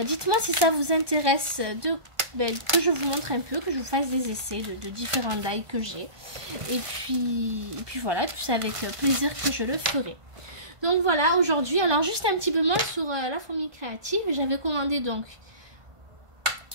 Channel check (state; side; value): late; left; 1.5 ms